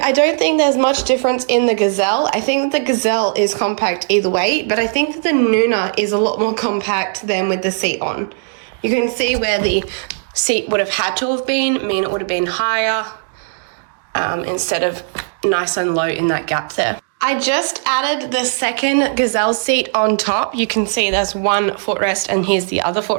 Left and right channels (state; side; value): silent; left; digital silence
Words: I don't think there's much difference in the Gazelle. I think that the Gazelle is compact either way, but I think that the Nuna is a lot more compact than with the seat on. You can see where the seat would have had to have been, mean it would have been higher instead of nice and low in that gap there. I just added the second Gazelle seat on top. You can see there's one footrest and here's the other